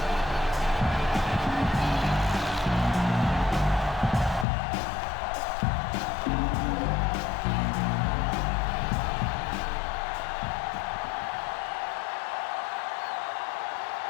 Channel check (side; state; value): right; drops out; at 4.5 s